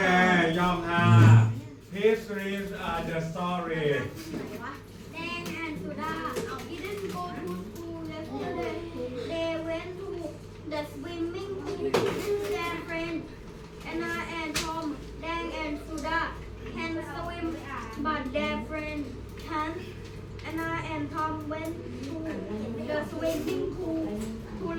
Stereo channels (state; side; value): identical; both; correlation 1.00